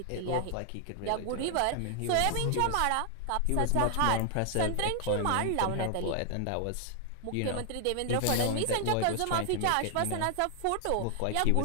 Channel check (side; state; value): both; different; correlation 0.00